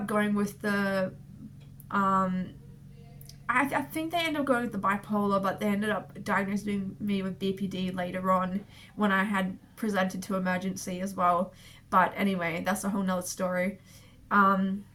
going with the I think they ended up going with the bipolar, but they ended up diagnosing me with BPD later on when I had presented to emergency as well. But anyway, that's a whole nother story.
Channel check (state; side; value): identical; both; correlation 1.00